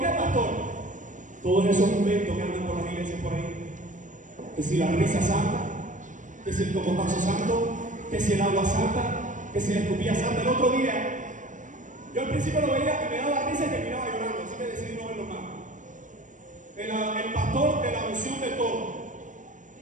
qué, pastor? Todos esos inventos que andan por las iglesias por ahí. Que si la risa santa, que si el cocotazo santo, que si el agua santa, que si la escupilla santa. El otro día, yo al principio lo veía y me daba risa y terminaba llorando, así que decidí no verlo más. El pastor de la unción de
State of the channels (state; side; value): late; left; 0.37 ms